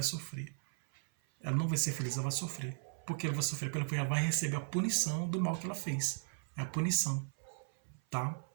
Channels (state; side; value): silent; left; 53 dB below the other